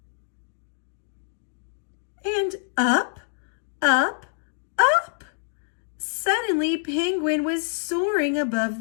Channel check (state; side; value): silent; right; digital silence